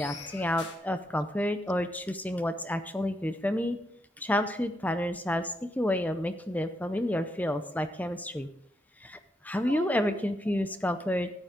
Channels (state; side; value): normal; both; correlation 0.80